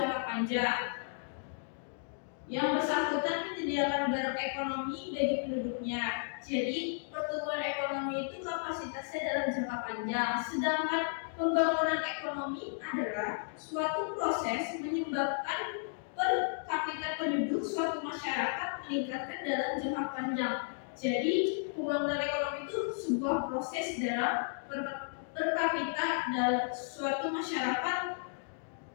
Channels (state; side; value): silent; right; digital silence